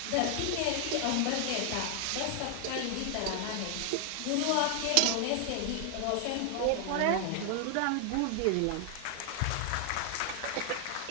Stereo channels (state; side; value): different; both; correlation 0.00